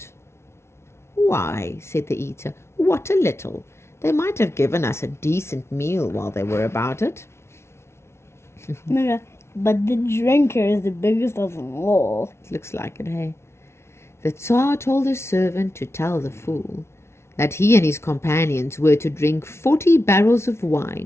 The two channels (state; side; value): late; right; 0.13 ms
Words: "Why," said the eater, "what a little! They might have given us a decent meal while they were about it." But the drinker is the biggest of them all. It looks like it, hey? The Tsar told his servant to tell the fool that he and his companions were to drink 40 barrels of